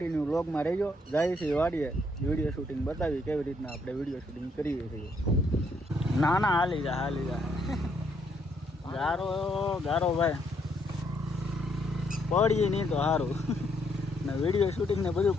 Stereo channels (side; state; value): both; normal; correlation 0.72